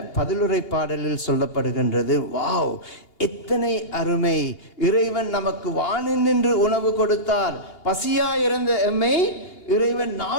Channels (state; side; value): late; right; 2.8 ms